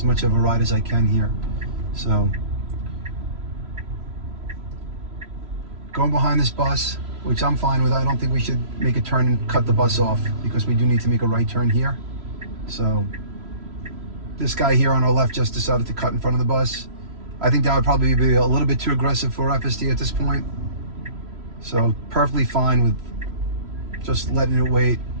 much of a ride as I can here. So going behind this bus, which I'm fine with. I don't think we should make a turn and cut the bus off because we do need to make a right turn here. So this guy here on our left just decided to cut in front of the bus. I think that would probably be a little bit too aggressive for FSD at this point. So perfectly fine with just letting it wait.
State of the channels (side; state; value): left; late; 3.0 ms